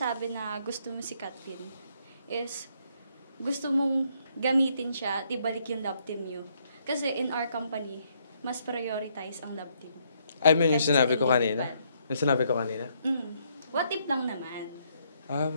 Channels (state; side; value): inverted; both; correlation -0.72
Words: na gusto mo si Katlin, is gusto mong gamitin siya at ibalik yung love team nyo. Kasi in our company, mas prioritize ang love team. I mean, yung Kasi sinabi ko sa kanina? Yung sinabi ko kanina? What if lang naman?